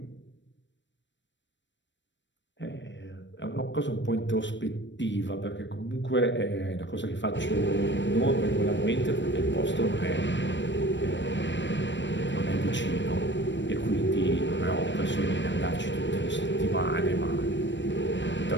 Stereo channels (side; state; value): right; late; 0.53 ms